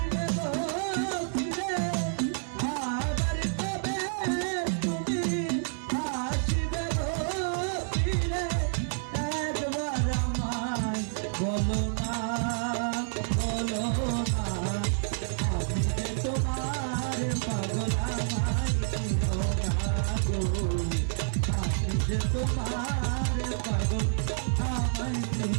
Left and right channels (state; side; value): silent; left; 59 dB below the other